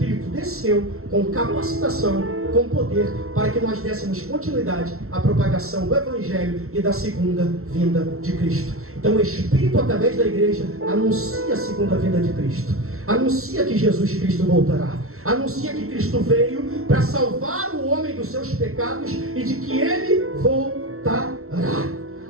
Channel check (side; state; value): left; late; 0.63 ms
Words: desceu com capacitação, com poder, para que nós dessemos continuidade à propagação do Evangelho e da segunda vinda de Cristo. Então o Espírito, através da igreja, anuncia a segunda vinda de Cristo, anuncia que Jesus Cristo voltará, anuncia que Cristo veio para salvar o homem dos seus pecados e de que Ele voltará.